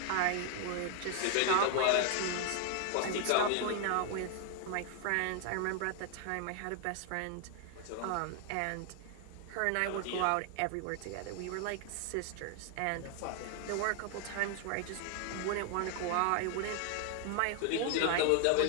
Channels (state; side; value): different; both; correlation 0.00